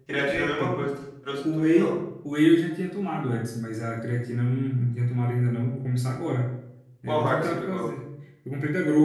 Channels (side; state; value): both; identical; correlation 1.00